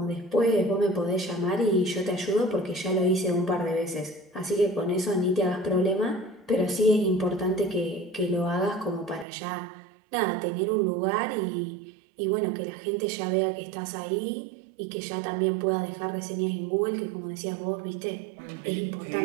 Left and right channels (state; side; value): drops out; left; at 9.2 s